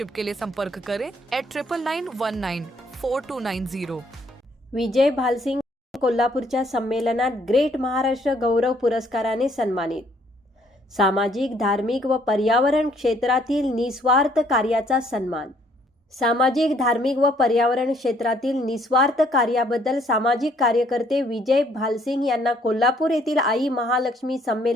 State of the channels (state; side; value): normal; both; correlation 0.65